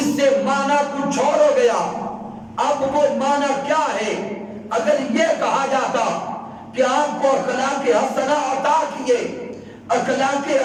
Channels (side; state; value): both; identical; correlation 1.00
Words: سے معنی کچھ اور ہو گیا۔ اب وہ معنی کیا ہے؟ اگر یہ کہا جاتا کہ آپ کو اخلاق حسنہ عطا کیے، اخلاق